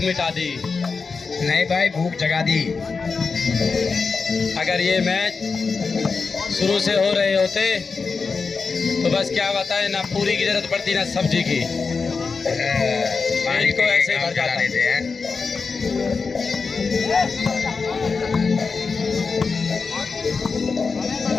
मिटा दी। नहीं भाई, भूख जगा दी। अगर ये मैच शुरू से हो रहे होते तो बस क्या बताएं, ना पूरी की जरूरत पड़ती ना सब्जी की। पानी को ऐसे भर चला जाता। देते हैं।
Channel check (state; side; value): quieter; right; 4.8 dB